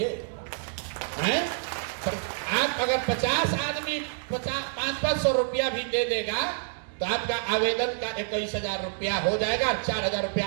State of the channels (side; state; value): left; silent; digital silence